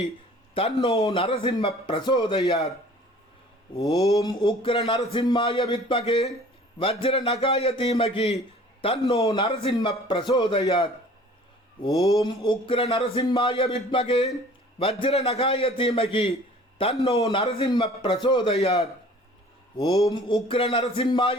தன்னோ நரசிம்ம பிரசோதயாத். ஓம் உக்ர நரசிம்மாய வித்மகே வஜ்ர நகாய தீமகி தன்னோ நரசிம்ம பிரசோதயாத். ஓம் உக்ர நரசிம்மாய வித்மகே வஜ்ர நகாய தீமகி தன்னோ நரசிம்ம பிரசோதயாத். ஓம் உக்ர நரசிம்மாய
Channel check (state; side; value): normal; both; correlation 0.49